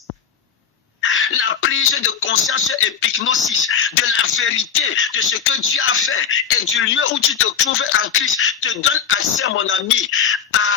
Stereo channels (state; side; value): quieter; right; 7.4 dB